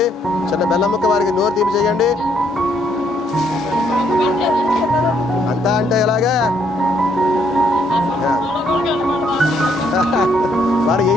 చిన్న బెల్లం ముక్క వారికి నోరు తీపి చేయండి. అంతా అంటే ఎలాగా వారు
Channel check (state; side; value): normal; both; correlation 0.70